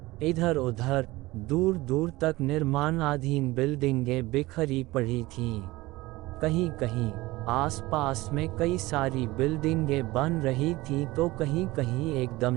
इधर उधर दूर दूर तक निर्माणाधीन बिल्डिंगें बिखरी पड़ी थीं। कहीं कहीं आसपास में कई सारी बिल्डिंगें बन रही थीं तो कहीं कहीं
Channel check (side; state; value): left; quieter; 19.8 dB